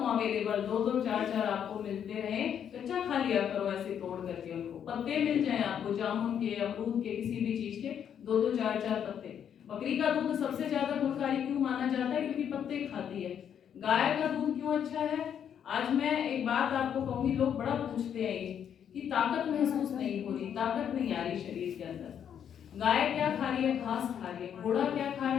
अवेलेबल। 2-2, 4-4 आपको मिलते रहे। कच्चा खा लिया करो ऐसे तोड़ करके, उनको पत्ते मिल जाए आपको जामुन के, अमरूद के, किसी भी चीज के 2-2, 4-4 पत्ते। बकरी का दूध सबसे ज्यादा गुणकारी क्यों माना जाता है? क्योंकि पत्ते खाती है। गाय का दूध क्यों अच्छा है? आज मैं एक बात आपको कहूंगी, लोग बड़ा पूछते हैं ये कि ताकत महसूस नहीं हो रही, ताकत नहीं आ रही शरीर के अंदर। गाय क्या खा रही है? घास खा रही है। घोड़ा क्या खा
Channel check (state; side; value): quieter; right; 8.7 dB